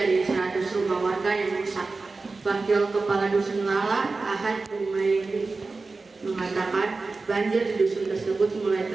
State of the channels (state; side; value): quieter; left; 3.8 dB